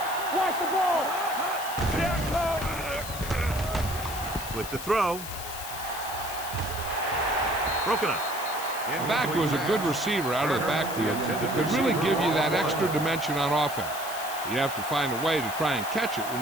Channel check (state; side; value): noise; left; hiss, 10 dB below the sound